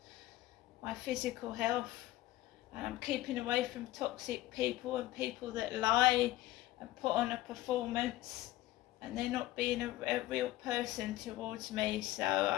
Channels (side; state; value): right; quieter; 16.2 dB